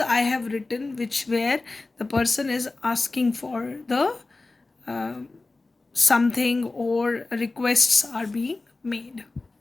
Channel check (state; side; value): quieter; right; 3.4 dB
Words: have written which where the person is asking for the uh, something or requests are being made.